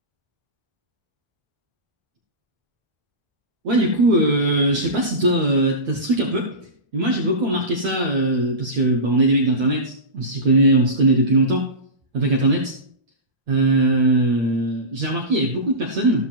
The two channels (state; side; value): late; left; 1.3 ms